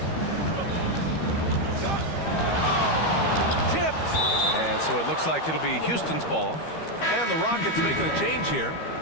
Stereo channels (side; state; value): right; late; 13 ms